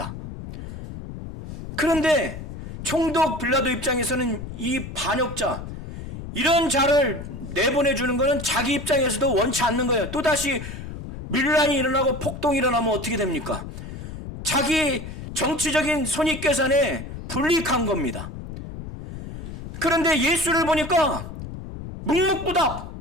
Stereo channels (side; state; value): left; noise; rumble, 10 dB below the sound